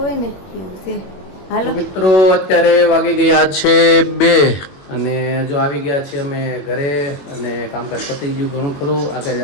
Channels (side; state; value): right; late; 21 ms